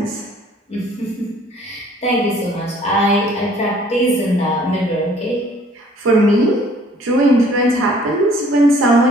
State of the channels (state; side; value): normal; both; correlation 0.57